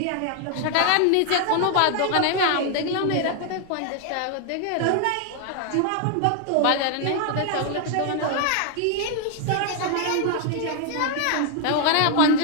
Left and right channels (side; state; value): both; different; correlation 0.00